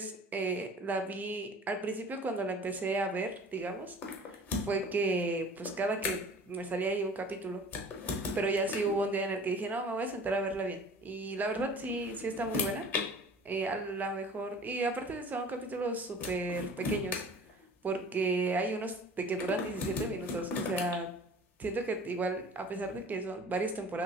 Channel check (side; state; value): both; normal; correlation 0.45